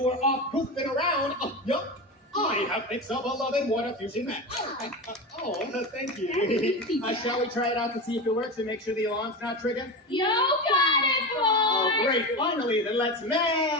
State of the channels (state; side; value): normal; both; correlation 0.22